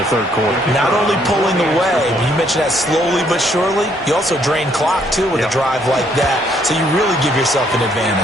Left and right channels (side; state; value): both; normal; correlation 0.69